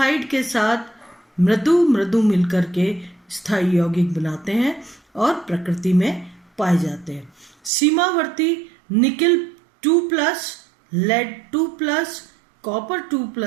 के साथ मृदु मिलकर के स्थायी यौगिक बनाते हैं और प्रकृति में पाए जाते हैं। सीमावर्ती निकेल 2+, लेड 2+, कॉपर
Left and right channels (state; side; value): drops out; left; at 7.7 s